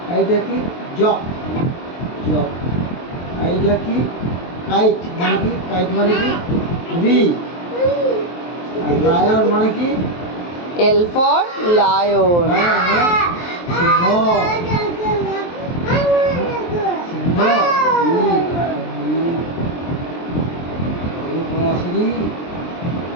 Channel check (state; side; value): late; right; 23 ms